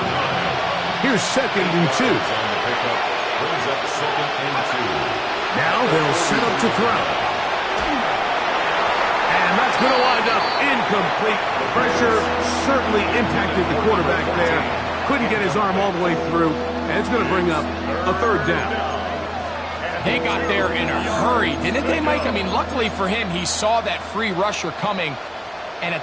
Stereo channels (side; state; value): both; identical; correlation 1.00